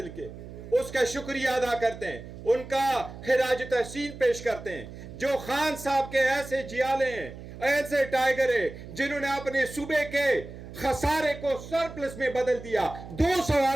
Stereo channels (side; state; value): right; noise; hum, 13 dB below the sound